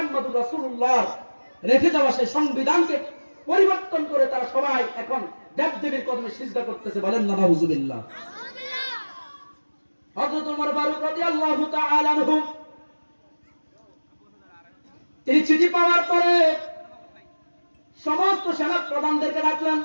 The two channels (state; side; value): inverted; both; correlation -1.00